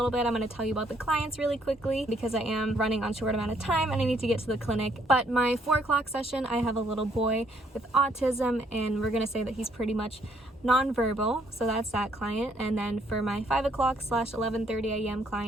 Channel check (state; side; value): normal; both; correlation 0.68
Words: bit, I'm going to tell you about the clients really quickly because I am running on short amount of time and I need to get to the clinic. But my 4 o'clock session, I have a little boy with autism, and we're going to say that he's pretty much nonverbal, so that's that client. And then for my 5 o'clock / 11:30 a.m.